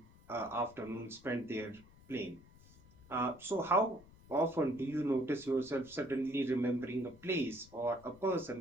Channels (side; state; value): left; noise; rumble, 24 dB below the sound